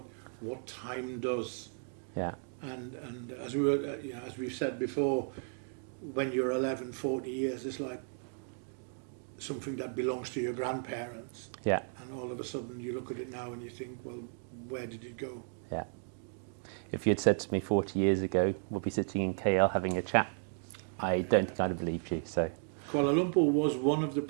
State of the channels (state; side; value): silent; left; 55 dB below the other